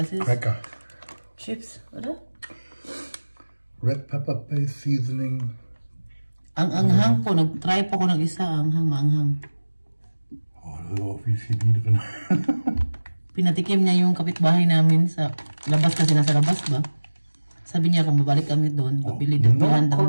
ist Lecker. Chips, oder? Red pepper paste seasoning. Ang anghang po, nag-try po ko ng isa, anghang, maanghang. Oh, da ist auch viel Chemie drin. Pinatikim niya yung kapitbahay namin sa labas kasi nasa labas ba? Sabi niya kung babalik kami doon, pabili doon. No Daw namin siya.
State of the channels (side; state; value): both; inverted; correlation -1.00